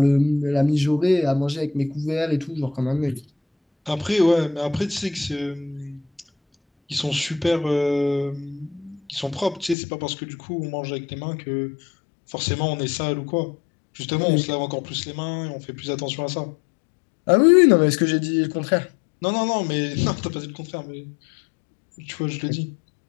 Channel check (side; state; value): right; drops out; at 9.8 s